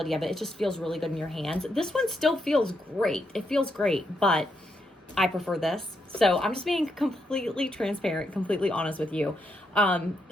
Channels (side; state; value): both; normal; correlation 0.80